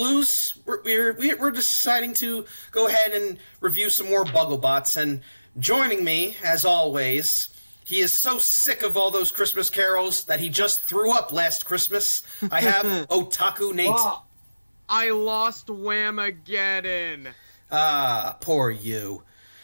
we're deciding to go ahead and review some more Bugglebots. And joining me, as always, he is so sick of all those Christmas carols that he just threw up last Christmas. I have Otaku Nate. Wow. I lost Whamageddon. Ah, poor you.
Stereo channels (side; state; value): both; inverted; correlation -0.95